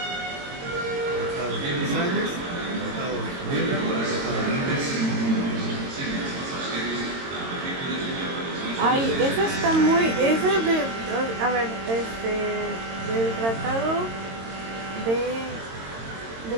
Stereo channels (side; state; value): left; late; 22 ms